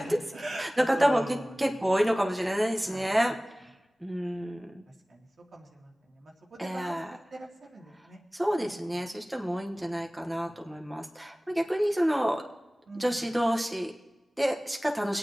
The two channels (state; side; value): normal; both; correlation 0.98